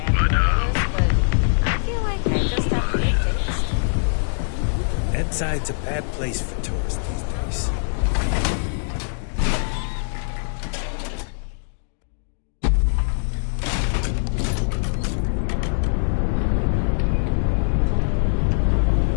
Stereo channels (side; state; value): right; silent; digital silence